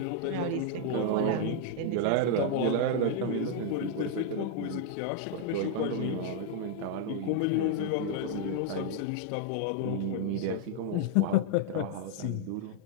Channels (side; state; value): both; different; correlation 0.00